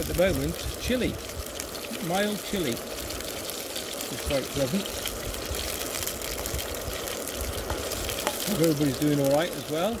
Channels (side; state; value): both; identical; correlation 1.00